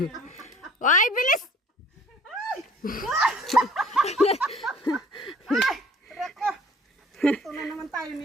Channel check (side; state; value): both; normal; correlation 0.52